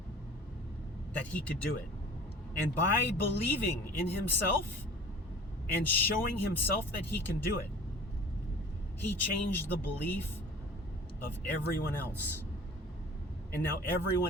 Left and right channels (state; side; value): normal; both; correlation 0.44